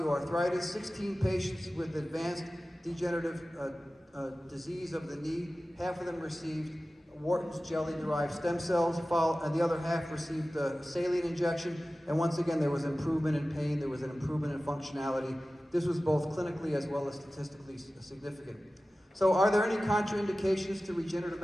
16 patients with advanced degenerative disease of the knee. Half of them received Wharton's jelly-derived stem cells, and the other half received a saline injection. And once again, there was improvement in pain, there was an improvement in functionality. This was both clinically as well as statistically significant. So are there any contraindications to regenerative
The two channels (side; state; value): both; normal; correlation 0.96